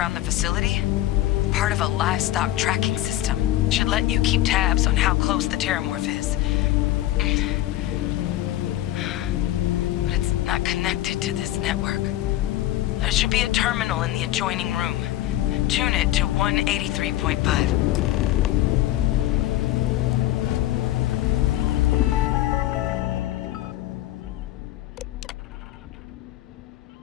the facility? Part of a livestock tracking system. Should let you keep tabs on how close the terramorph is. But it's not connected to this network. There should be a terminal in the adjoining room. Tune it to 183.5.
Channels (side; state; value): right; quieter; 14.7 dB